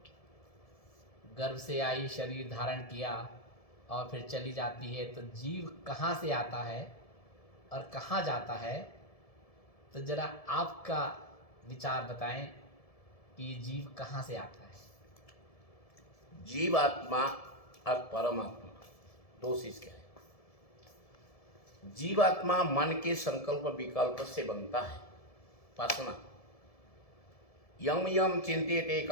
गर्भ से आई, शरीर धारण किया और फिर चली जाती है, तो जीव कहाँ से आता है और कहाँ जाता है, तो जरा आपका विचार बताएं कि ये जीव कहाँ से आता है। जीवात्मा और परमात्मा दो चीज क्या है। जीवात्मा मन के संकल्प विकल्प से बनता है, वासना। यम यम चिंत्यते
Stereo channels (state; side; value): late; right; 1.7 ms